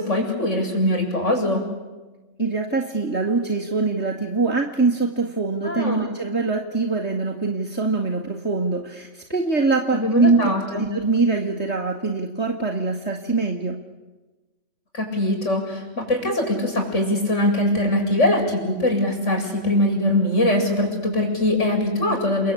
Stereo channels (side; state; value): right; late; 3.5 ms